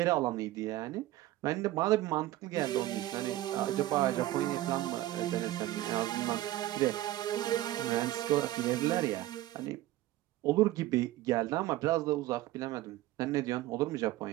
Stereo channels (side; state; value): left; quieter; 15.6 dB